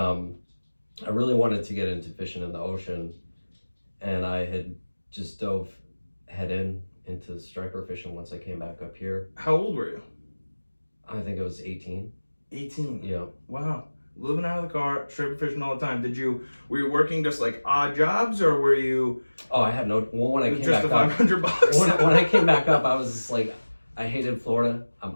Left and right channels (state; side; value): inverted; both; correlation -1.00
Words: really wanted to get into fishing in the ocean, and I had just dove head into striper fishing once I came back up here. How old were you? I think it was 18. 18. Yeah. Wow. Living out of the car, striper fishing all the time. Were you working just like odd jobs, or were you? Oh, I had no. Well, when I came just back the up, 500 bucks. when I came back up, I was just like, I hated Florida.